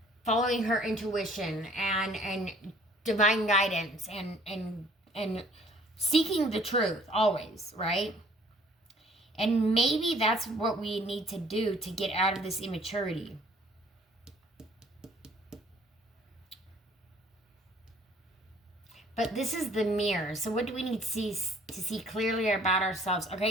following her intuition and divine guidance and seeking the truth always, right? And maybe that's what we need to do to get out of this immaturity. But this is the mirror. So what do we need to see clearly about ourselves?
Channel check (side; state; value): both; normal; correlation 0.57